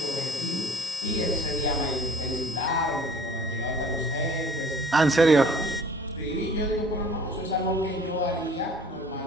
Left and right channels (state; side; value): normal; both; correlation 0.50